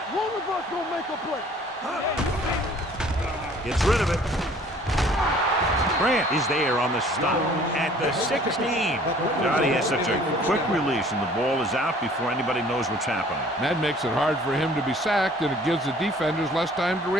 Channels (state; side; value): normal; both; correlation 0.54